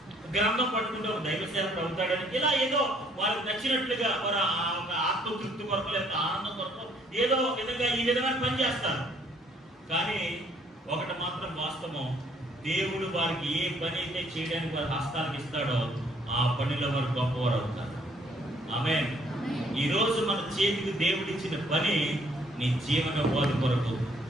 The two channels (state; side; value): normal; both; correlation 0.64